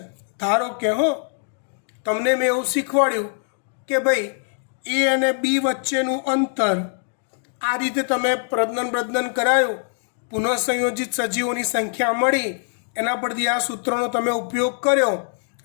ધારો કે તમને મેં એવું શીખવાડ્યું કે ભાઈ એ અને બી વચ્ચેનું અંતર આ રીતે તમે પ્રજનન કરાયું, પુનઃસંયોજિત સજીવોની સંખ્યા મળી, એના પરથી આ સૂત્રનો તમે ઉપયોગ કર્યો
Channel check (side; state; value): right; silent; 62 dB below the other